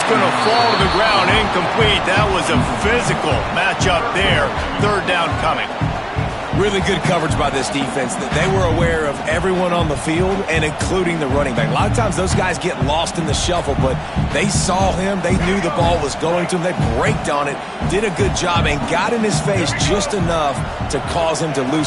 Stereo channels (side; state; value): both; identical; correlation 1.00